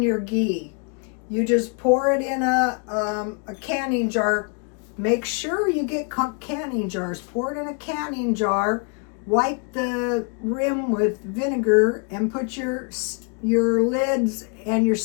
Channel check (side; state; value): right; quieter; 37.5 dB